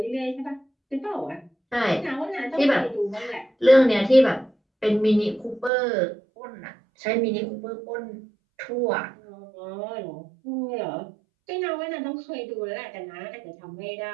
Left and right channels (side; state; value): left; drops out; at 5.7 s